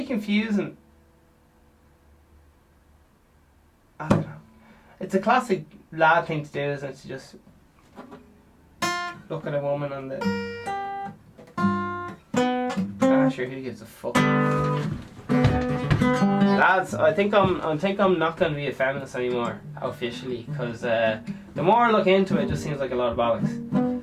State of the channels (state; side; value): identical; both; correlation 1.00